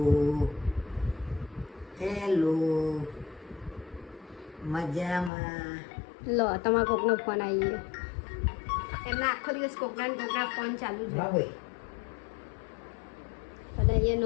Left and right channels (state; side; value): drops out; right; at 5.3 s